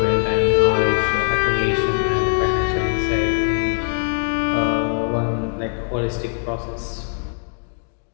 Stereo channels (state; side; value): silent; right; digital silence